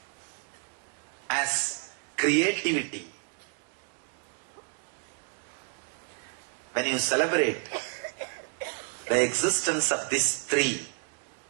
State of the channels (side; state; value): left; quieter; 39.4 dB